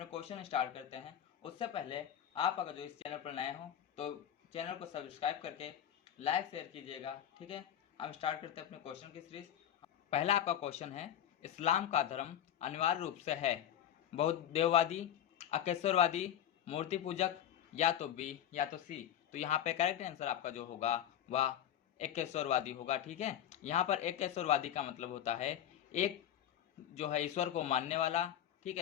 क्वेश्चन स्टार्ट करते हैं। उससे पहले आप अगर जो इस चैनल पर नए हों तो चैनल को सब्सक्राइब करके लाइक शेयर कीजिएगा। ठीक है, हम स्टार्ट करते हैं अपने क्वेश्चन की सीरीज। पहला आपका क्वेश्चन है, इस्लाम का धर्म अनिवार्य रूप से है बौद्ध देववादी, अकेश्वरवादी, मूर्ति पूजक, या तो बी या तो सी। तो यहाँ पे करेक्ट आंसर आपका जो होगा वह एकेश्वरवादी होगा। ठीक है, यहाँ पर एकेश्वरवादी का मतलब होता है एक जो है ईश्वर को मानने वाला। ठीक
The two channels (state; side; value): quieter; right; 10.5 dB